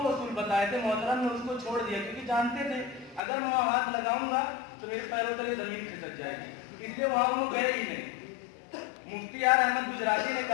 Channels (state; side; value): drops out; right; at 3.2 s